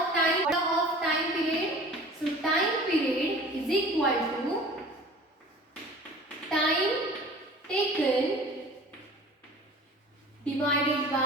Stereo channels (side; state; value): both; normal; correlation 0.43